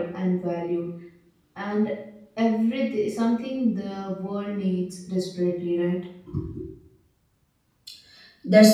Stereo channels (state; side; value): identical; both; correlation 1.00